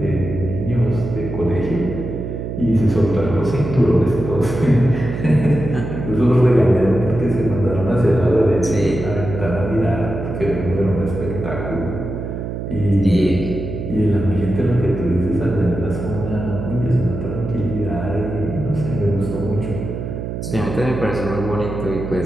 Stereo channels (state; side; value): noise; right; hum, 6 dB below the sound